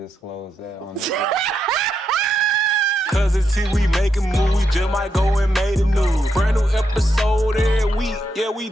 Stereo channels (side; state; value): both; normal; correlation 0.82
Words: that on the Cuzn T, we making moves, we just might go and make the news. Brand new episode every week, yeah, we